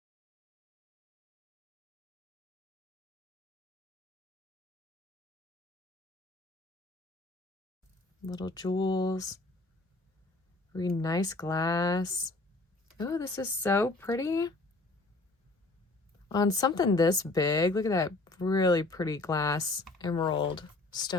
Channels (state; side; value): quieter; right; 3.1 dB